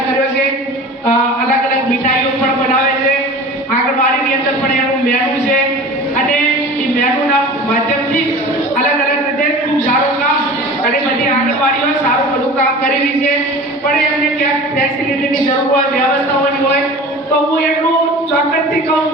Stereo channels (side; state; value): both; normal; correlation 0.38